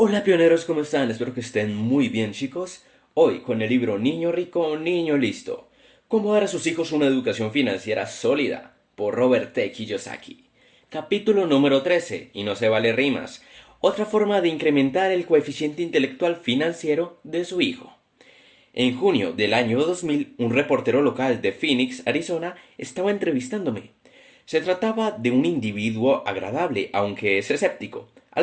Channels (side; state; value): both; identical; correlation 1.00